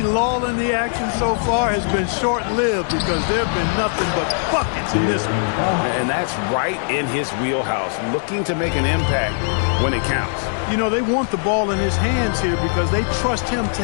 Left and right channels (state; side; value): silent; right; digital silence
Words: lull in the action so far has been short-lived because there have been nothing but buckets in this one. And that's right in his wheelhouse, looking to make an impact when it counts. You know, they want the ball in his hands here because they trust him to